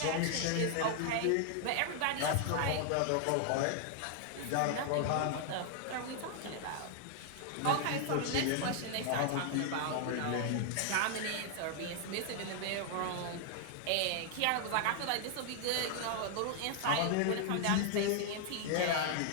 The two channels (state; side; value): different; both; correlation 0.00